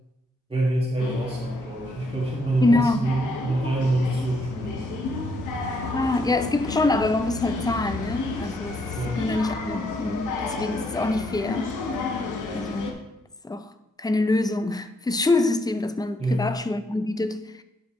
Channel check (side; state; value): both; normal; correlation 0.74